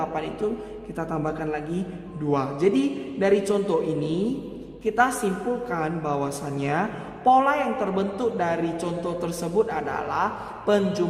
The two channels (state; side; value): identical; both; correlation 1.00